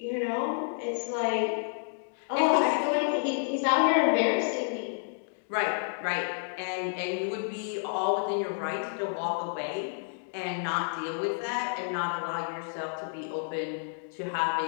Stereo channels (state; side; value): silent; right; digital silence